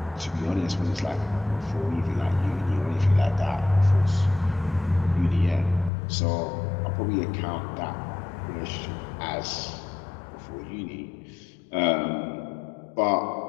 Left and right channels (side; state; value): right; drops out; at 5.9 s